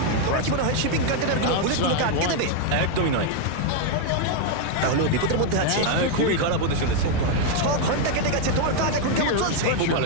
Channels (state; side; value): different; both; correlation 0.00